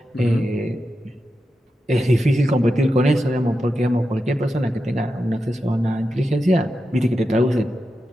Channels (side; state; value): both; normal; correlation 0.89